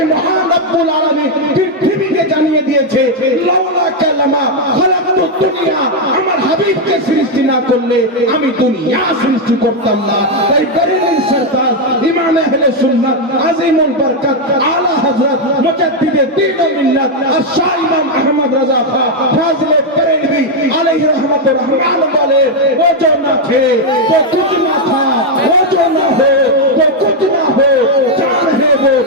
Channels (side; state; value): both; normal; correlation 0.01